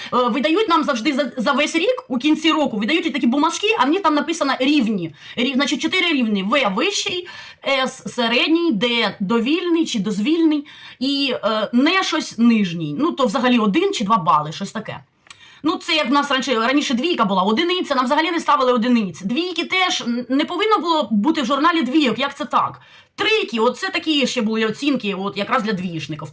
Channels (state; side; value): identical; both; correlation 1.00